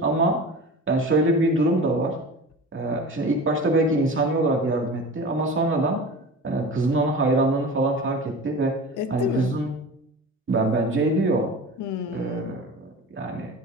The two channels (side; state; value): both; normal; correlation 0.34